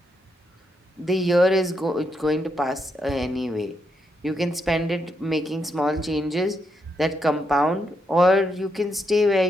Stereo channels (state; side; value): normal; both; correlation 0.80